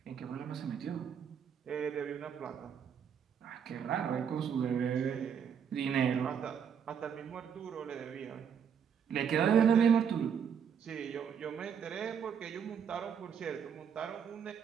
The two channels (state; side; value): quieter; left; 7.6 dB